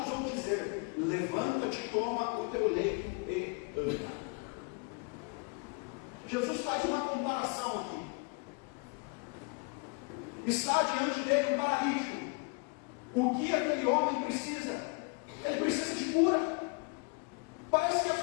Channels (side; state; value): right; quieter; 32.3 dB